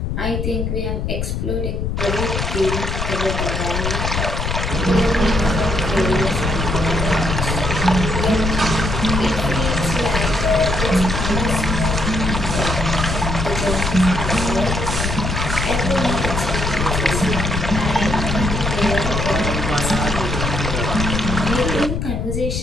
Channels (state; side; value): noise; left; rumble, 2 dB below the sound